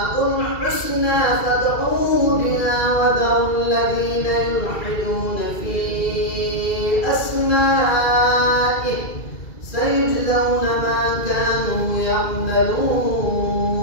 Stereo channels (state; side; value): late; right; 2.3 ms